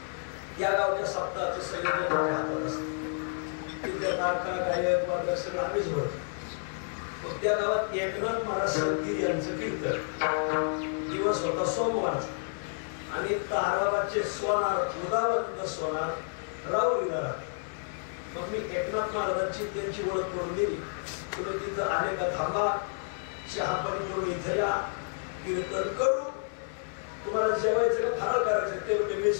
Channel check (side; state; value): right; silent; 58 dB below the other